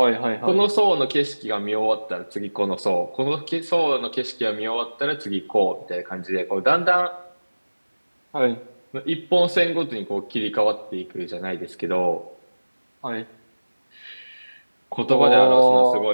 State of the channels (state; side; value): inverted; both; correlation -1.00